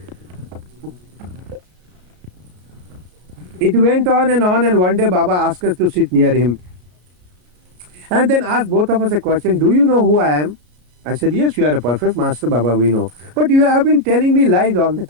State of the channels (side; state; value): left; late; 33 ms